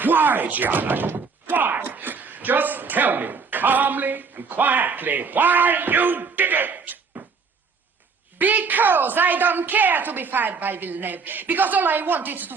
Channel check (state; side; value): quieter; left; 5.1 dB